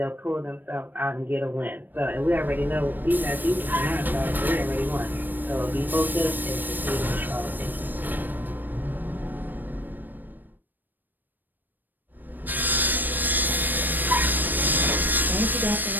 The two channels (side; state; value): left; late; 0.091 ms